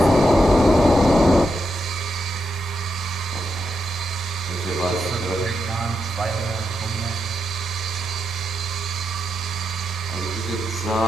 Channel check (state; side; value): normal; both; correlation 0.84